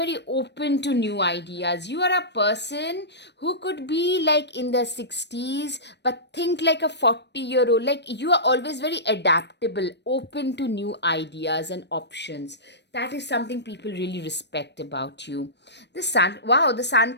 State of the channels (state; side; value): late; right; 0.50 ms